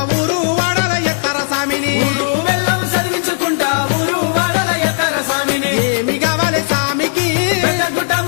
ఊరు వాడల ఎత్తర సామిని, ఊదు బెల్లం చదివించుకుంటా ఊరు వాడల ఎత్తర సామిని. ఏమి కావాలి సామికి పెద్దగుట్ట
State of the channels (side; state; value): right; silent; digital silence